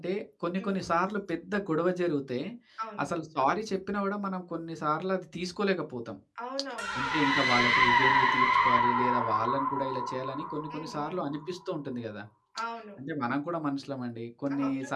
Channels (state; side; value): identical; both; correlation 1.00